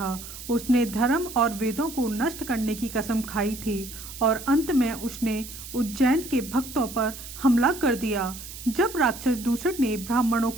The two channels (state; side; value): noise; right; hiss, 12 dB below the sound